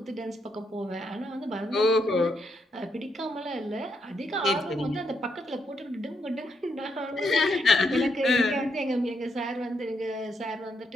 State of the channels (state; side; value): normal; both; correlation 0.78